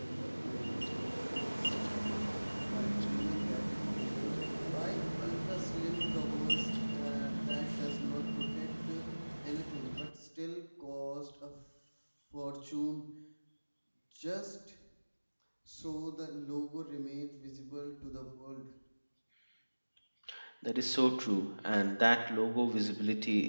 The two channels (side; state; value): both; inverted; correlation -1.00